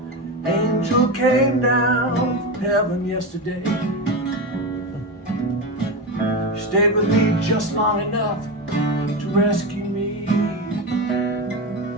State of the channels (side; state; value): both; normal; correlation 0.18